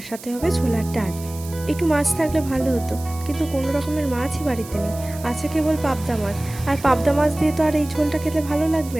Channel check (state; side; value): noise; right; hiss, 16 dB below the sound